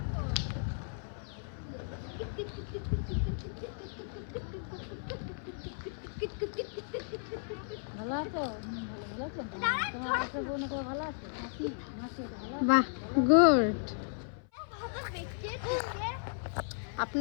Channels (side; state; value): right; silent; 55 dB below the other